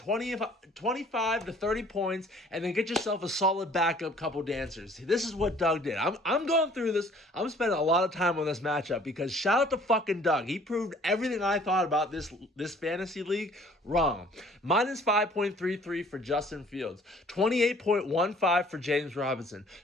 to 30 points, and then get yourself a solid backup couple dancers. This is what Doug did. I'm going through this. I'm spending a lot of time on this matchup because shout out to fucking Doug. He proved everything I thought about this fantasy league wrong. Minus 5.33 for Justin Fields, 28.15 for James Robinson,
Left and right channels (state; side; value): normal; both; correlation 0.55